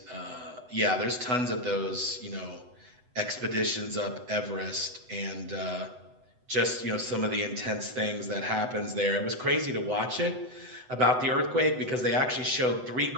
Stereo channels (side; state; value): left; late; 8.0 ms